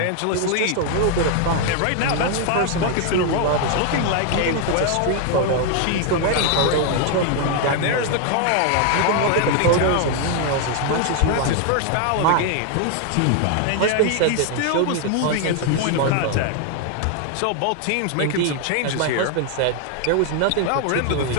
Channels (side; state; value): both; different; correlation 0.00